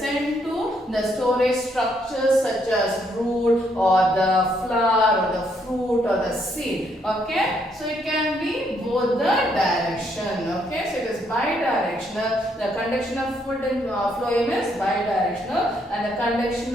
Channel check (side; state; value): both; normal; correlation 0.72